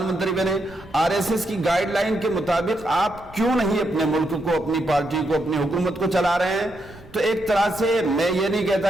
منتری بنے، RSS کی گائیڈ لائن کے مطابق آپ کیوں نہیں اپنے ملک کو، اپنی پارٹی کو، اپنی حکومت کو چلا رہے ہیں؟ تو ایک طرح سے میں یہ نہیں کہتا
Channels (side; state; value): right; noise; rumble, 23 dB below the sound